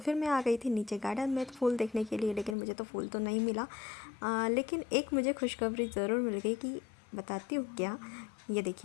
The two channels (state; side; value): drops out; right; at 2.6 s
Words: मैं आ गई थी नीचे गार्डन में फूल देखने के लिए, लेकिन मुझे तो फूल तो नहीं मिला। लेकिन एक मुझे खुशखबरी ज़रूर मिल गई कि बताती हूँ क्या। ये